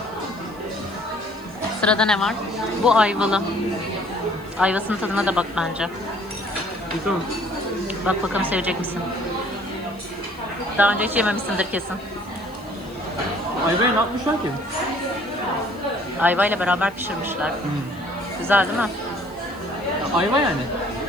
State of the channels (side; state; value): left; noise; hiss, 27 dB below the sound